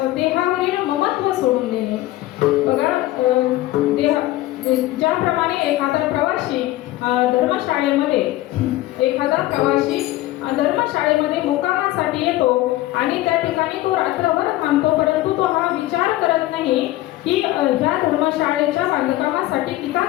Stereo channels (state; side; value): quieter; right; 16.5 dB